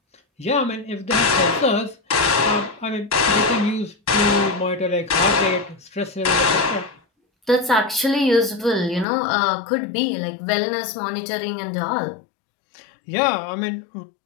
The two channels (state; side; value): drops out; right; at 9.1 s